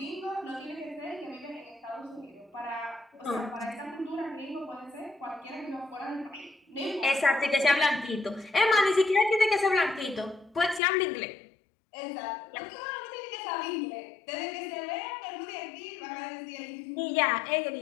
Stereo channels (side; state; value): right; drops out; at 10.8 s